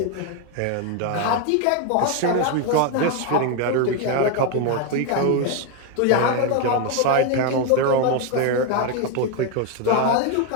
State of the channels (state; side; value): different; both; correlation 0.01